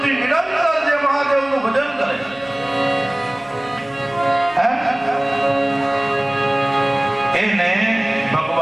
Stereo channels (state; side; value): noise; right; hum, 29 dB below the sound